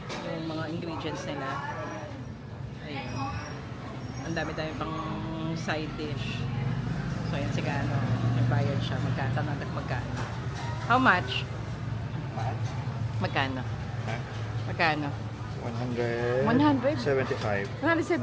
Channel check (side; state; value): both; identical; correlation 1.00